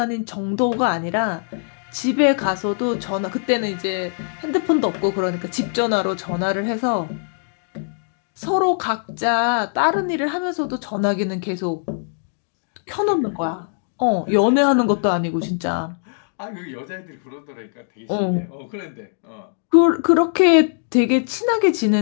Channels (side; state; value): right; silent; digital silence